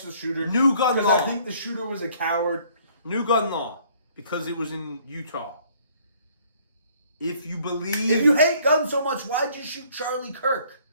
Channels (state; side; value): inverted; both; correlation -0.60